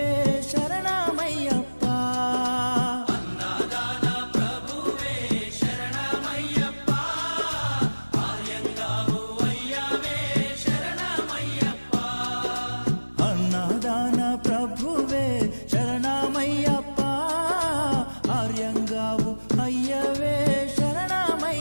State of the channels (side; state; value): both; inverted; correlation -1.00